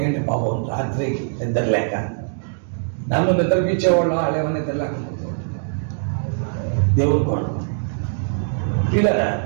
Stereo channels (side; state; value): left; silent; digital silence